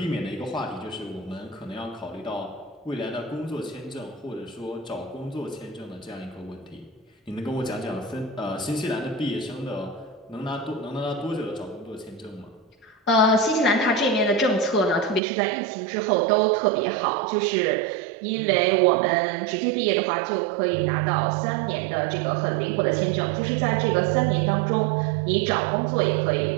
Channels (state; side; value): drops out; left; at 15.2 s